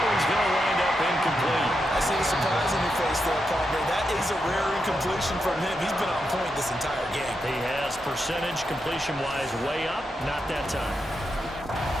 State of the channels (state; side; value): normal; both; correlation 0.85